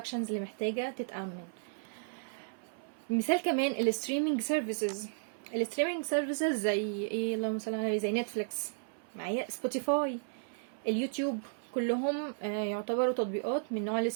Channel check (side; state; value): left; silent; 55 dB below the other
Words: اللي محتاجة تتأمن. مثال كمان الستريمينج سيرفيسز. الستريمينج سيرفيسز زي ايه؟ اللهم صل على النبي، زي نتفليكس، معايا سبوتيفاي، اليوتيوب، كلهم يعتبروا تطبيقات من نوع